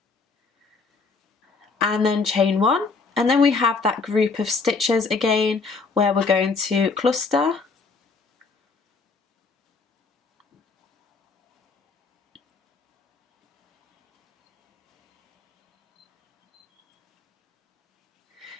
and then chain 1, and then we have that group of stitches again where we're going to cluster,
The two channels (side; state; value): right; quieter; 4.4 dB